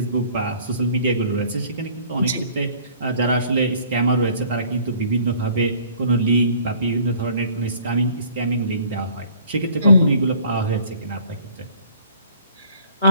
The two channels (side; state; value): both; inverted; correlation -0.54